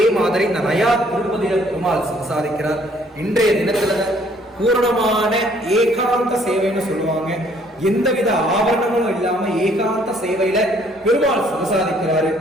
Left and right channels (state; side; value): normal; both; correlation 0.62